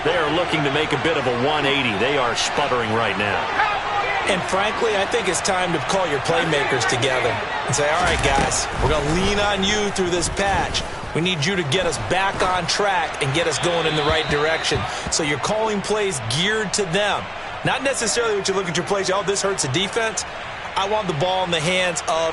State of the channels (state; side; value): identical; both; correlation 1.00